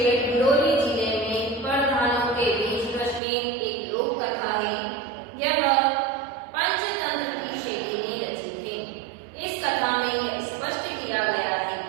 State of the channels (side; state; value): left; drops out; at 3.2 s